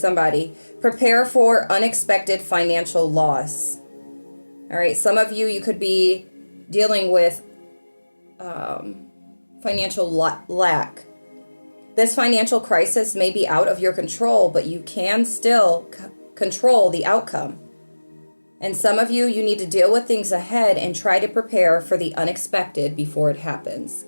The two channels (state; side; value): inverted; both; correlation -1.00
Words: Prepare for unexpected financial loss. All right? Some of you, you could be dealing with financial lack. This financial crisis may be out of your control, but you can still control the outcome. And some of you, you need to deal with things ahead and try to prepare for the unexpected before it happens.